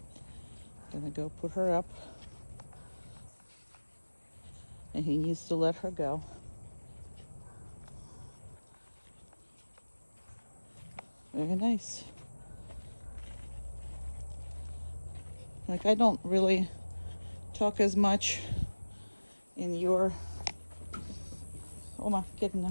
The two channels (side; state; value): both; inverted; correlation -1.00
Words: Gonna go put her up. And he needs to let her go. Very nice. Like, I don't really talk as much in your, Oma, get in